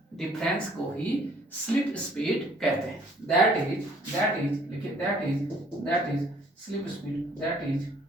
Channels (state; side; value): normal; both; correlation 0.59